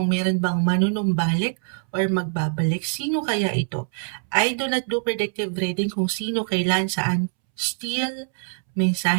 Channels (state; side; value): silent; left; 63 dB below the other